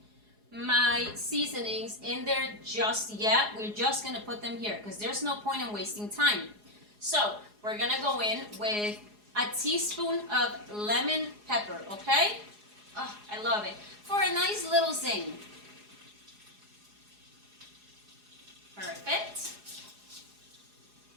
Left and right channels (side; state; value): left; late; 4.8 ms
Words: my seasonings in there just yet, we're just going to put them here because there's no point in wasting time. So we're going to go in with a teaspoon of lemon pepper, okay? Oh, I love it. For a nice little zing. Perfect.